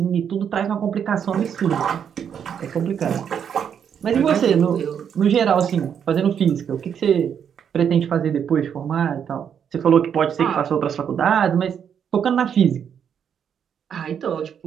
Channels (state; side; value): quieter; left; 8.0 dB